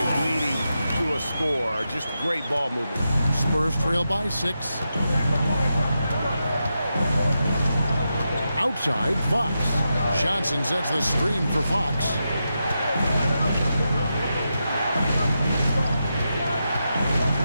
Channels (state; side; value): inverted; both; correlation -0.87